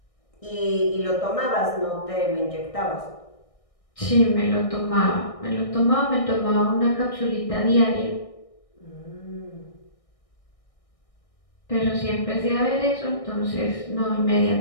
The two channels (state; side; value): late; right; 1.6 ms